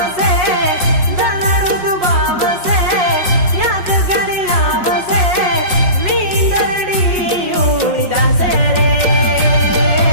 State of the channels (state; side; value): late; left; 5.5 ms